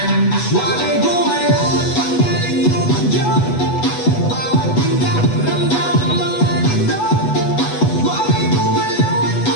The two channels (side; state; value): right; late; 8.1 ms